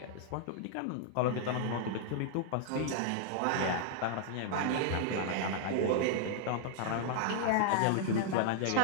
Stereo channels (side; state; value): both; different; correlation -0.01